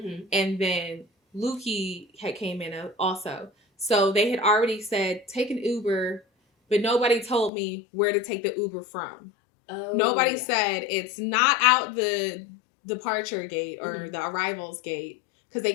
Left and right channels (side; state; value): right; drops out; at 7.5 s